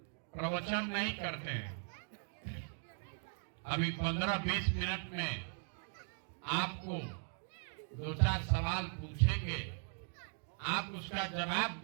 प्रवचन नहीं करते हैं। अभी 15-20 मिनट में आपको 2-4 सवाल पूछेंगे, आप उसका जवाब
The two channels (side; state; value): left; silent; 52 dB below the other